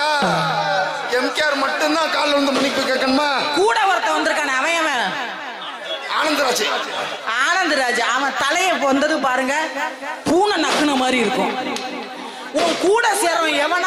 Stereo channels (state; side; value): identical; both; correlation 1.00